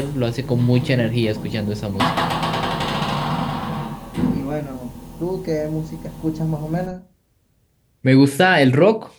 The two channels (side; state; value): both; identical; correlation 1.00